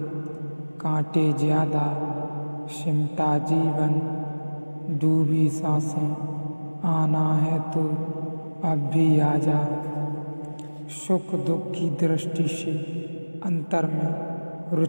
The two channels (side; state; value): both; inverted; correlation -1.00